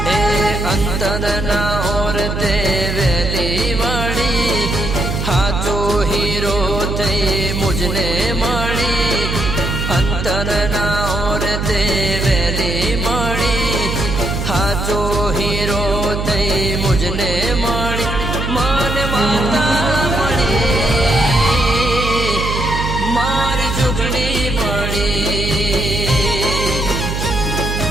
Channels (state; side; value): noise; right; hum, 3 dB below the sound